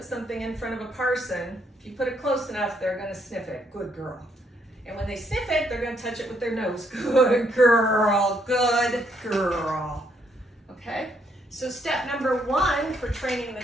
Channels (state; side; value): normal; both; correlation 0.72